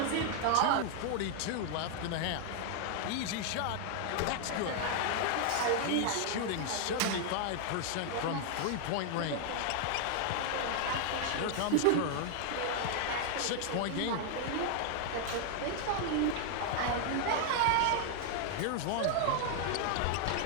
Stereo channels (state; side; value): different; both; correlation 0.00